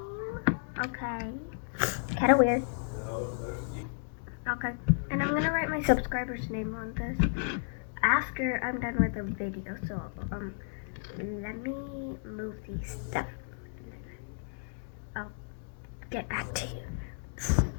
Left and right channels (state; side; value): silent; right; digital silence